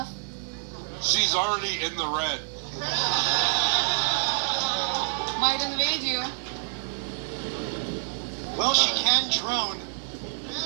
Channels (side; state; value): left; silent; 60 dB below the other